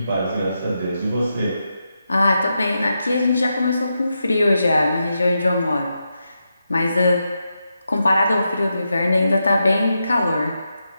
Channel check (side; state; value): both; inverted; correlation -0.86